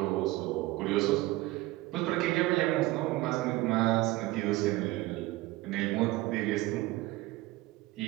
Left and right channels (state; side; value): quieter; left; 18.8 dB